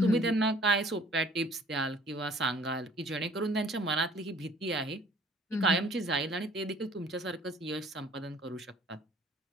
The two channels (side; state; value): both; normal; correlation 0.54